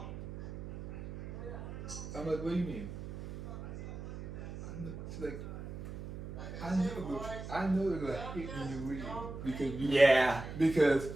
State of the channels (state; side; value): noise; right; hum, 9 dB below the sound